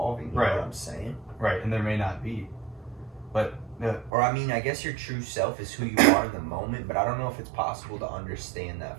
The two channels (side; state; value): left; drops out; at 4.1 s